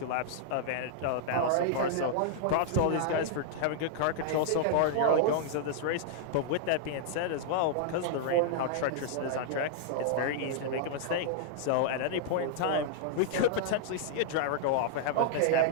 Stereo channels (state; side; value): different; both; correlation -0.01